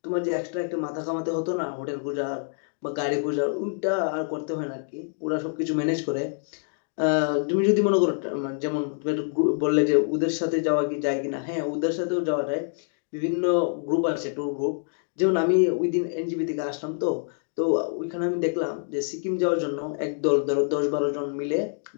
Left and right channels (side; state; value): right; silent; digital silence